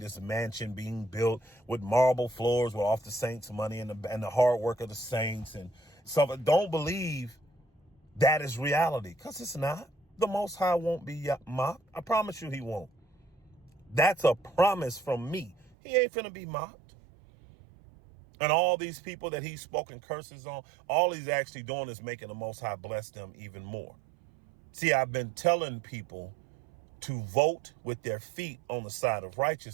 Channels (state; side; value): drops out; left; at 15.8 s